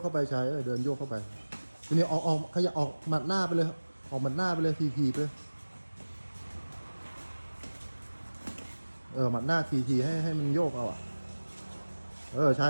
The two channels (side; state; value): both; inverted; correlation -1.00